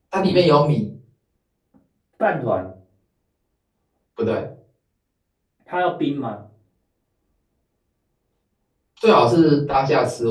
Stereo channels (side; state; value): both; identical; correlation 1.00